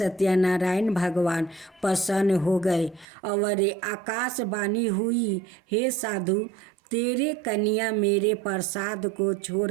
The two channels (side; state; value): left; drops out; at 3.1 s